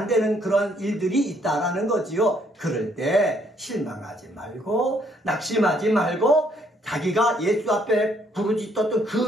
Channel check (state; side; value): normal; both; correlation 0.68